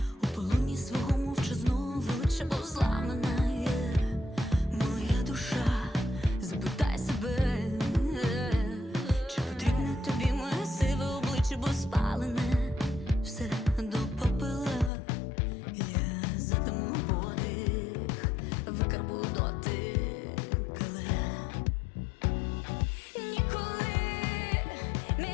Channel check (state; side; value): drops out; right; at 14.9 s